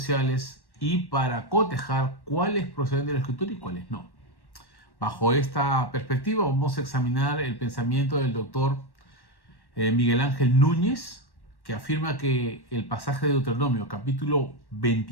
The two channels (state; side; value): late; right; 1.1 ms